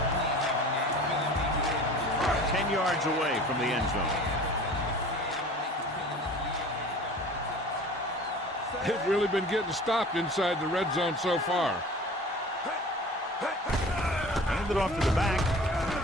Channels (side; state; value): both; normal; correlation 0.42